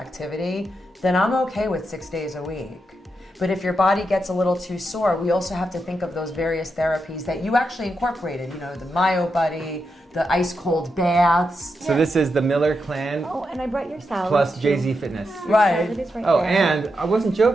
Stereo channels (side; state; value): both; normal; correlation 0.85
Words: then I'm okay with 6 days a week. But if your body gets a little too sore, we also have to think of those various therapies that you actually incorporated, the Myo Buddy, the ice cold baths. So this is the Miller Clan Oh, and I brought your salad. plus too. Jay-Z Fitness. Your Right. salad is right Oh, there. and I wasn't